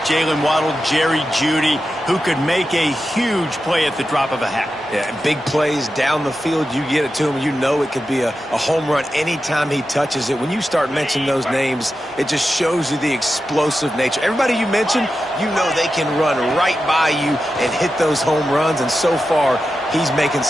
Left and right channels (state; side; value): normal; both; correlation 0.91